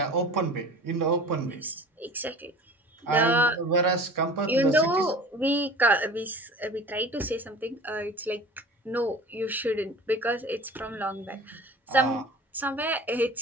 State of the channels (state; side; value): normal; both; correlation 0.41